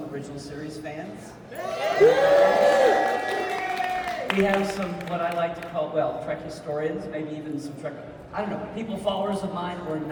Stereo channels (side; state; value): both; identical; correlation 1.00